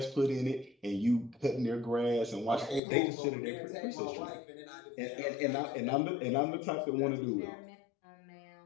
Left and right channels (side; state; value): right; drops out; at 2.8 s